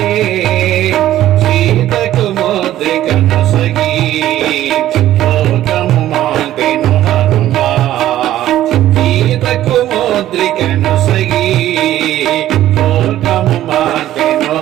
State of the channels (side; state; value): left; quieter; 13.3 dB